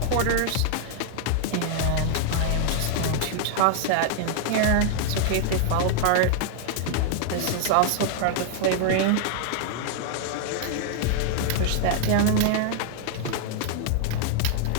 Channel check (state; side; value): different; both; correlation 0.00